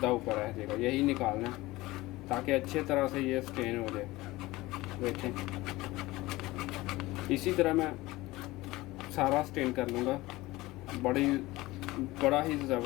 ऊपर आ जाएगा। यही निकालना है ताकि अच्छे तरह से ये स्टेन हो जाए। देखें, इसी तरह मैं सारा स्टेन कर लूँगा। बड़ा ही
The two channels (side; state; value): right; quieter; 19.5 dB